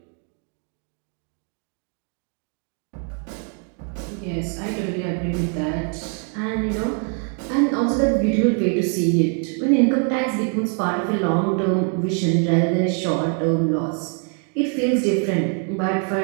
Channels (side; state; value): left; quieter; 39.9 dB